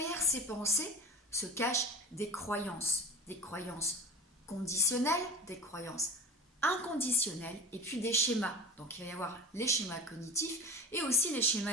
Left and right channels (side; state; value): both; normal; correlation 0.33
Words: ces pensées se cachent des croyances conditionnelles, des croyances inconditionnelles et puis des schémas. Donc il va y avoir les schémas cognitifs et aussi les